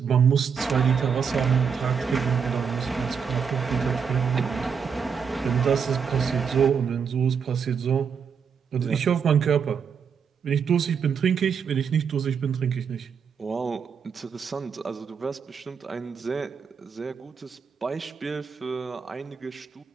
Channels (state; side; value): quieter; left; 6.5 dB